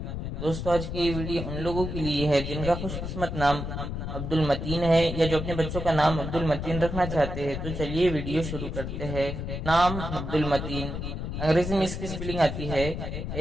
دوستو آج کی یہ ویڈیو ان لوگوں کے لیے ہے جن کا خوش قسمت نام عبد المتین ہے یا جو اپنے بچوں کا نام عبد المتین رکھنا چاہتے ہیں۔ تو چلیے ویڈیو شروع کرتے ہیں۔ نام عبد المتین، انگریزی میں اس کی سپیلنگ آتی ہے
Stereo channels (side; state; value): left; noise; rumble, 5 dB below the sound